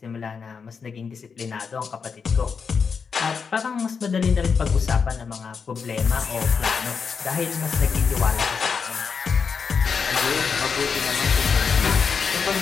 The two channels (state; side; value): quieter; right; 5.8 dB